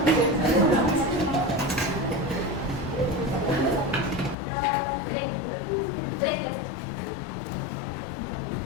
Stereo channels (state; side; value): drops out; right; at 4.4 s